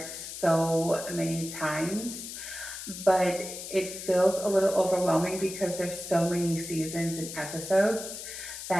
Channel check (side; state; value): left; noise; hiss, 9 dB below the sound